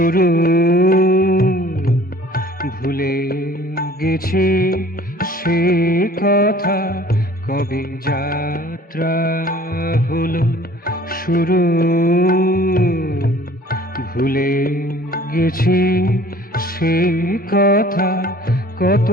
ভুলে গেছি সে কথা, কবে যাত্রা হলো শুরু। ভুলে গেছি সে কথা, কত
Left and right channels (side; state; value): both; normal; correlation 0.51